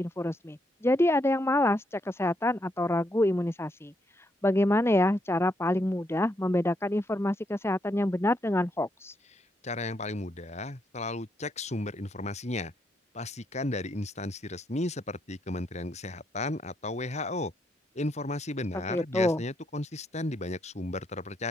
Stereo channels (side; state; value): both; normal; correlation 0.77